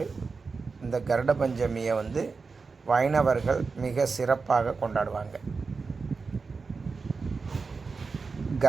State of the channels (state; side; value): quieter; left; 4.6 dB